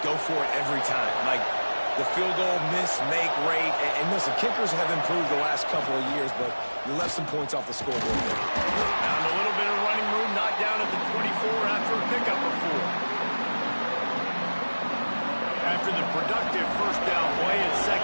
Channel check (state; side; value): inverted; both; correlation -1.00